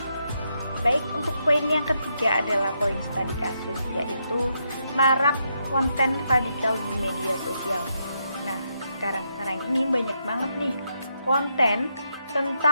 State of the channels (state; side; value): inverted; both; correlation -0.80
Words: Baik, untuk poin yang ketiga adalah poin studi kasus, yaitu marak konten radikal di media sosial. Nah, sekarang ini banyak banget nih konten